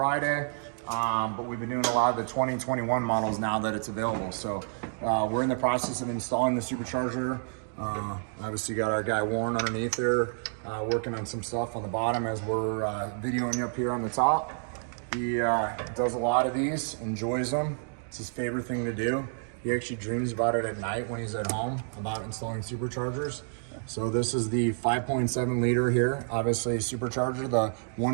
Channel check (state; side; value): silent; left; digital silence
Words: But we've been doing a lot of the 2021 models now that it's available. So we're in the process of installing the supercharger. Obviously got our guy Warren underneath there, working on some stuff on the bottom as we're videoing you up here on the top. He does a lot of these, enjoys them. It's his favorite thing to do. He actually dreams about it at night when he's at home, about installing superchargers. So this is the 5.7 liter here, obviously supercharger, the